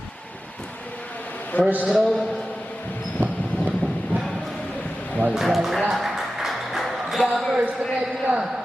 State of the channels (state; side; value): normal; both; correlation 0.94